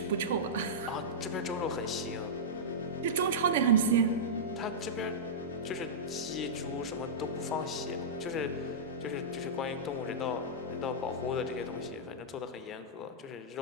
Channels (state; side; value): normal; both; correlation -0.13